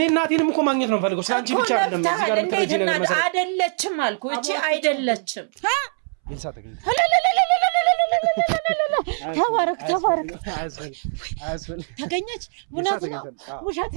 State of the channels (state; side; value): silent; left; 64 dB below the other